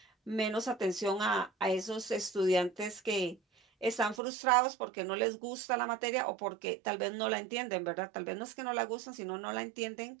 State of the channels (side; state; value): left; drops out; at 4.2 s